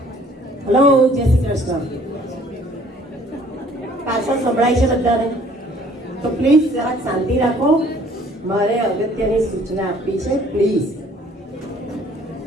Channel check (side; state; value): both; normal; correlation 0.57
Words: હેલો, જય શ્રી કૃષ્ણ. પાછળ સંભળાય છે બધાને? તો પ્લીઝ જરાક શાંતિ રાખો. મારે અગત્યની સૂચના આપવી છે. પ્લીઝ